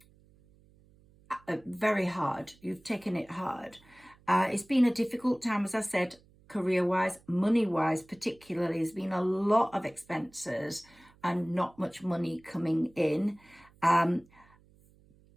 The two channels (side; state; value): right; noise; hum, 29 dB below the sound